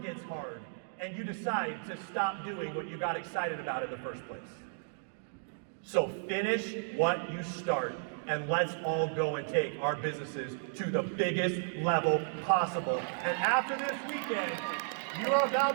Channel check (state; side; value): silent; left; digital silence